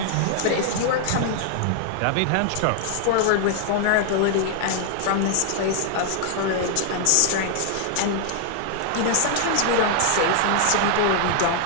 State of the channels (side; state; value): both; different; correlation 0.00